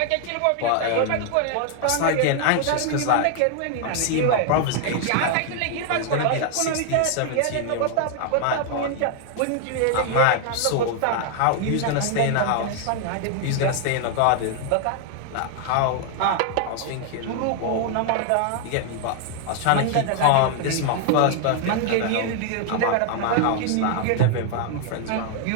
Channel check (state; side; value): different; both; correlation 0.00